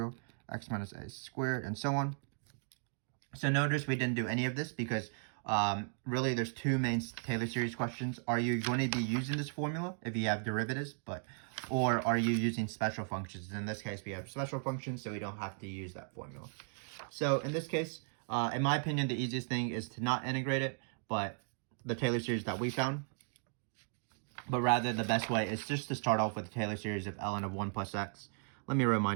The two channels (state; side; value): silent; left; 54 dB below the other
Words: x minus a squared, and so on. So notice we didn't do any of this because really there's two main Taylor series questions. Are you going to be using this formula if you have derivatives, or are you using special functions? In this case, we have special functions, so we don't have to use that formula. So in this case, in my opinion, the easiest thing is to not integrate it, but the Taylor series that we found. But rather, the best way is just to start off with the Taylor series of ln of 1 plus x. Let me